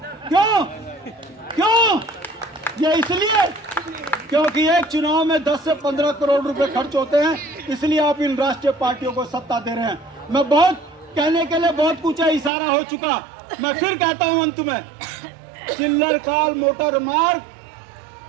क्यों? ये इसलिए क्योंकि एक चुनाव में 10 से 15 करोड़ रुपए खर्च होते हैं, इसलिए आप इन राष्ट्रीय पार्टियों को सत्ता दे रहे हैं। मैं बहुत कहने के लिए बहुत कुछ है, इशारा हो चुका। मैं फिर कहता हूं अंत में, चिल्लर काल मोटर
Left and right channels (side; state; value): left; drops out; at 12.5 s